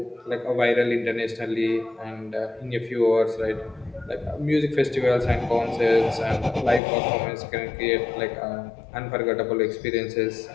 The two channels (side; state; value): right; drops out; at 6.8 s